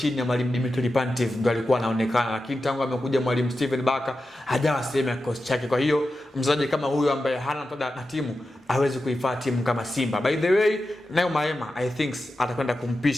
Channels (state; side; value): normal; both; correlation 0.91